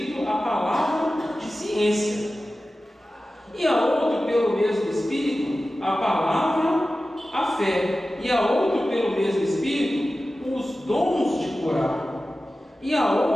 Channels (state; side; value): normal; both; correlation 0.95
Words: a palavra de ciência, e a outro pelo mesmo Espírito a palavra, a fé, e a outro pelo mesmo Espírito os dons de curar, e a